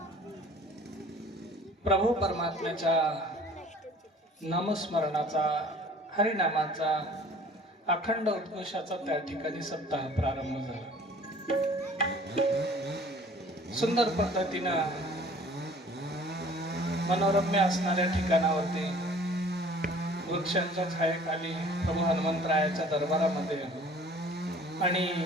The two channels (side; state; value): both; normal; correlation 0.51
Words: प्रभू परमात्म्याच्या नामस्मरणाचा, हरिनामाचा, अखंड उद्घोषाचा त्या ठिकाणी सप्ताह प्रारंभ झाला. सुंदर पद्धतीनं मनोरम्य असणाऱ्या ठिकाणावरती वृक्षांच्या छायेखाली प्रभू हनुमंतरायाच्या दरबारामध्ये आणि